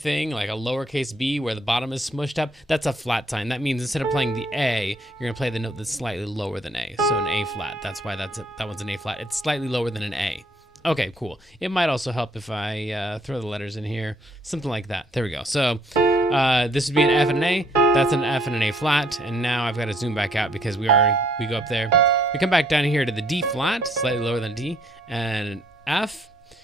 like a lowercase b where the bottom is smushed up, that's a flat sign. That means instead of playing the A, you're gonna play the note that's slightly lower than A. So an A flat. That's why that one's an A flat. It's slightly lower than an A. Okay, cool. It might also help if I throw the letters in here, something like that. There we go. So this would be an F and an A. That's an F and an A flat. And now I've got to zoom back out because we go up there. We come back down here to the D flat, slightly lower than D, and an F.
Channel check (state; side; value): normal; both; correlation 0.65